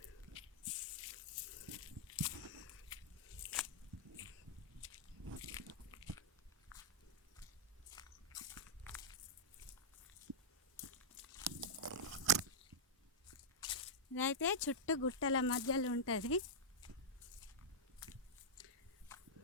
ఇదైతే చుట్టూ గుట్టల మధ్యలో ఉంటుంది.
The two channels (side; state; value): both; normal; correlation -0.07